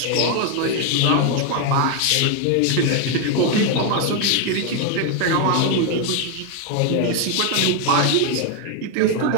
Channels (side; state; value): both; different; correlation 0.01